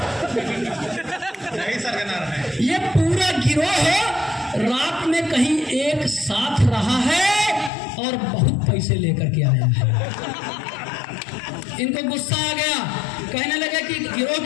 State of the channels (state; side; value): drops out; right; at 7.7 s